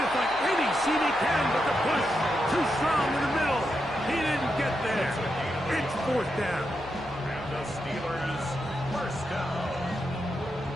to find any seam he can, but the push too strong in the middle. He didn't get there. It's 4th down. And the Steelers first down.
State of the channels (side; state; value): left; noise; hum, 22 dB below the sound